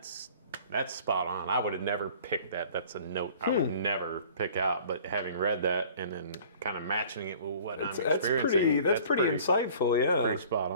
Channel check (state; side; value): inverted; both; correlation -0.49